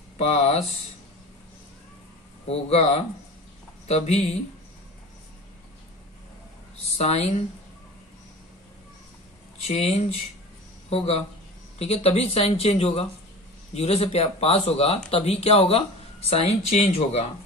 पास होगा तभी साइन चेंज होगा। ठीक है, तभी साइन चेंज होगा, जीरो से पास होगा तभी क्या होगा, साइन चेंज होगा।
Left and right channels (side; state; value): both; normal; correlation 0.36